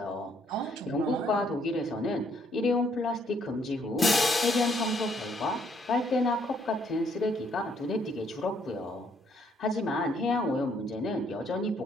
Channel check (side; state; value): both; normal; correlation 0.68